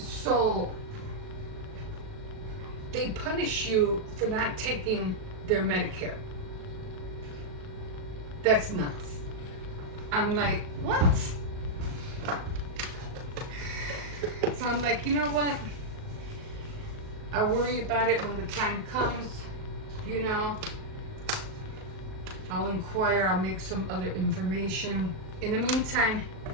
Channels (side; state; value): left; late; 38 ms